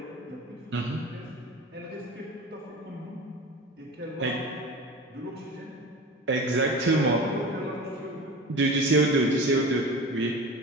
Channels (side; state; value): both; normal; correlation 0.33